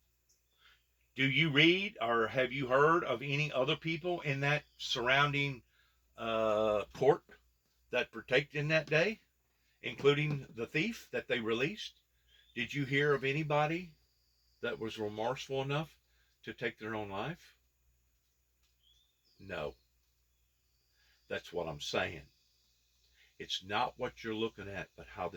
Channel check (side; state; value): both; identical; correlation 1.00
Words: Do you read or have you heard of any other people in that surrounding court that partaked in that day, including the thief that they released? Did you hear of anybody that was remorseful enough to take their own life? No. That's what I'm saying. It's not what you're looking at, but how